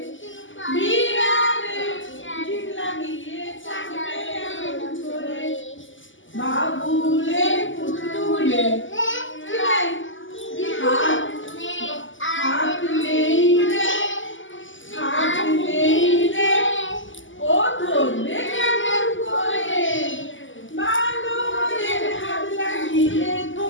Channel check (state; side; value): late; right; 0.56 ms